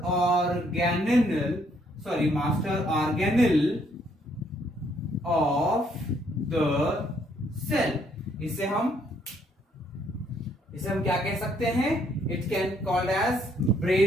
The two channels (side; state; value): both; normal; correlation 0.69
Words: organelle of the cell. इसे हम क्या कह सकते हैं? It can called as